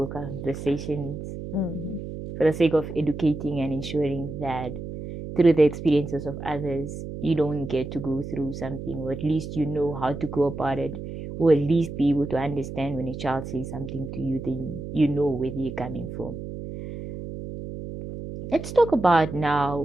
conversations for the sake of educating and ensuring that through the experiences of others, you don't get to go through something, or at least you know how to go about it, or at least be able to understand when a child says something to you, then you know where they're coming from. Let's talk about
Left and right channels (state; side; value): noise; right; hum, 8 dB below the sound